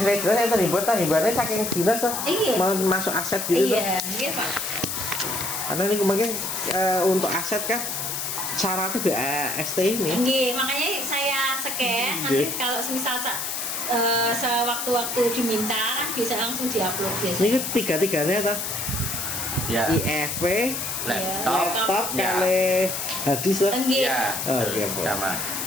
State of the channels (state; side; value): noise; left; hiss, 3 dB below the sound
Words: yang terhibur hiburannya saking dinas tuh Iya. mau masuk aset gitu tuh. Iya, iya Pak. Karena ini mungkin untuk aset kan syaratnya BAST ini. Nggih, makanya saya scan nanti Nggih. kalau semisal sewaktu-waktu diminta kan bisa langsung diupload biasa. Ini tiga-tiganya tuh. Ya. IFP, laptop, ya. kali harddisk tuh. Nggih. Ya. Oh iya, Bu. Sama.